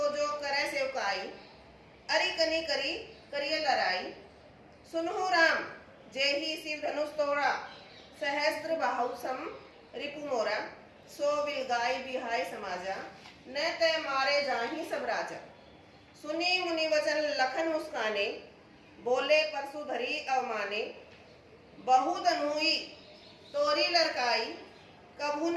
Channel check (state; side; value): identical; both; correlation 1.00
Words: जो करे सेवकाई, अरि कनी करी करिय लड़ाई, सुनहु राम जेहि शिव धनुष तोड़ा, सहस्त्र बाहु सम रिपु मोरा, सो बिल गाय बिहाय समाजा, न ते मारे जाहि सब राजा, सुनी मुनि वचन लखन मुस्काने, बोले परसु धरी अवमाने, बहु धनुई तोरी लड़काई, कभुन